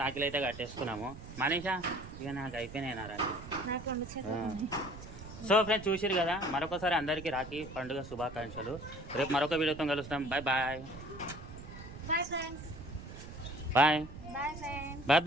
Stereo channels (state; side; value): noise; right; rumble, 13 dB below the sound